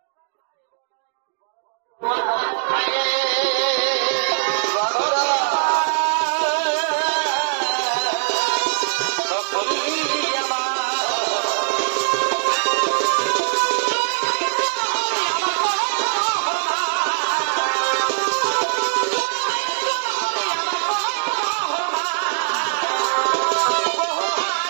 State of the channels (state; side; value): silent; left; digital silence